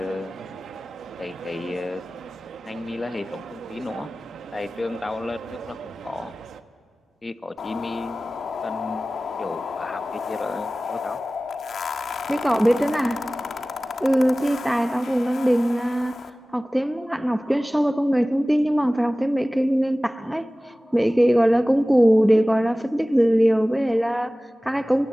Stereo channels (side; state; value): both; normal; correlation 0.97